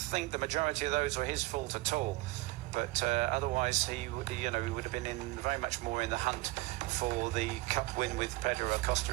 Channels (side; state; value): left; quieter; 20.6 dB